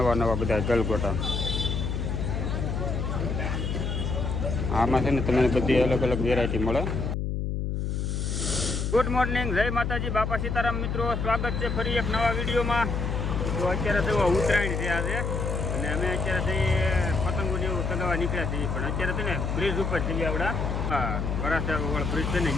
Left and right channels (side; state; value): left; noise; hum, 1 dB below the sound